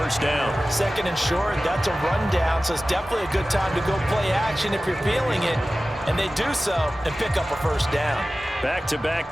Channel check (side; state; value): both; normal; correlation 0.96